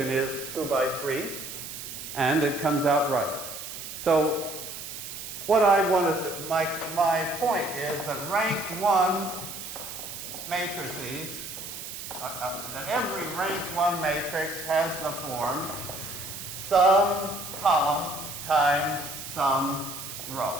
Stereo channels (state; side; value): noise; right; hiss, 9 dB below the sound